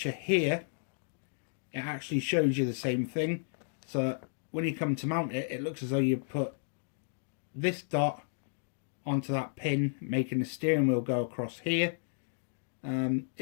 here, it actually shows you the same thing. So when you come to mount it, it looks as though you put this dot onto that pin, making the steering wheel go across here.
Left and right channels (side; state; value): right; silent; digital silence